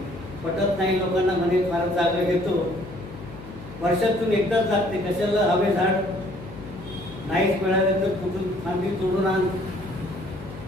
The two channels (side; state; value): left; noise; hum, 14 dB below the sound